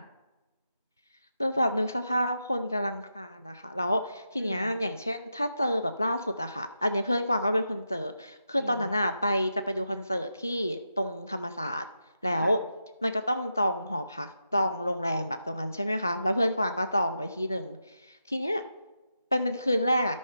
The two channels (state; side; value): inverted; both; correlation -0.86